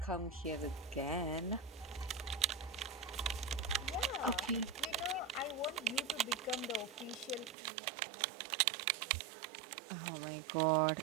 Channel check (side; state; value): left; drops out; at 7.6 s